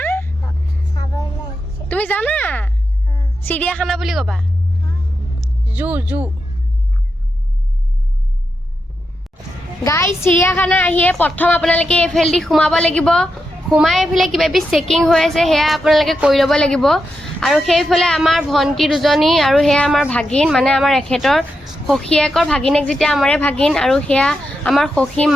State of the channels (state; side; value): normal; both; correlation 0.86